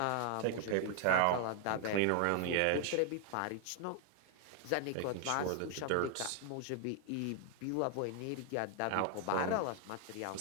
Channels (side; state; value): both; different; correlation 0.00